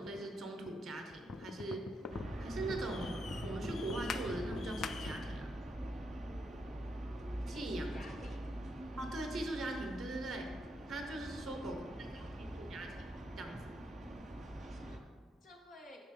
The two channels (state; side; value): normal; both; correlation 0.80